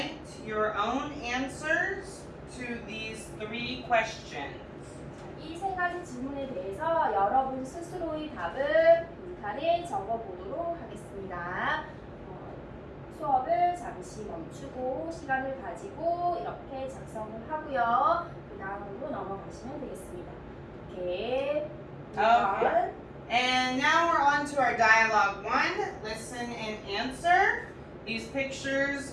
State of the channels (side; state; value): both; identical; correlation 1.00